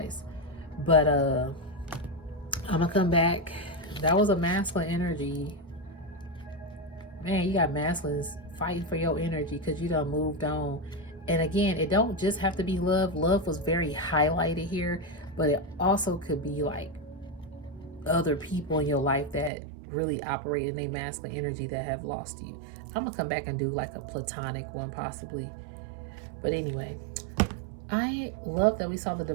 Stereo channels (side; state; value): left; drops out; at 19.5 s